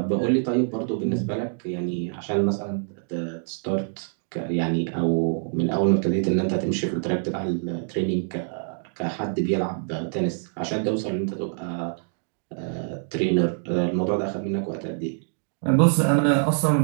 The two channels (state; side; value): silent; left; digital silence